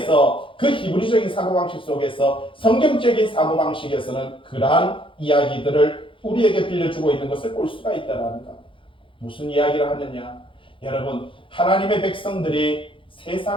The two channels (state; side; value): late; right; 0.25 ms